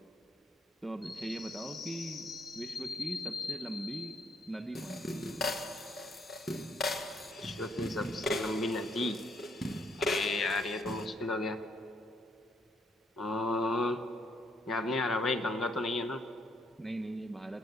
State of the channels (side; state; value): both; normal; correlation 0.71